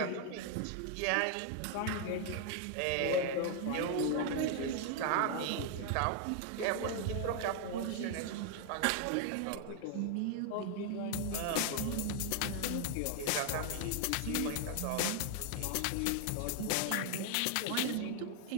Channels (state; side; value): different; both; correlation 0.00